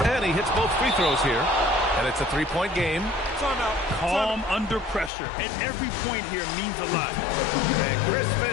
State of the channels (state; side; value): drops out; right; at 5.1 s